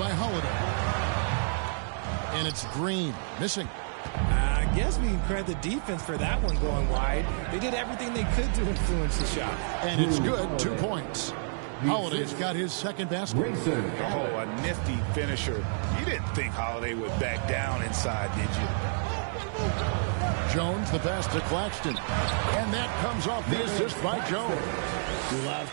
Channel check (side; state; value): left; silent; 58 dB below the other